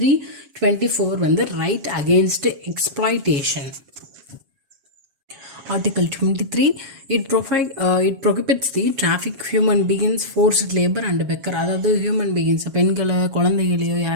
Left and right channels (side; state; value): left; late; 7.3 ms